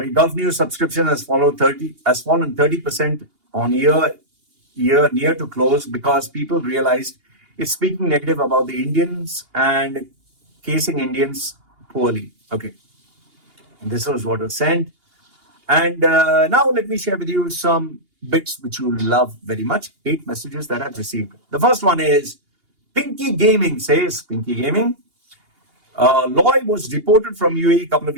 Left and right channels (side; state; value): left; late; 2.8 ms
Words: Gulf News subscription has fallen 30% on year near to close because people realized it's speaking negative about the Indians and casing Indians poorly. Okay, this was what was sent. And now let me share with you some bits which you love very much. 8 messages that I've received. The first one is Pinky Gaming says, Pinky Gaming, Loy was deported from UAE a couple of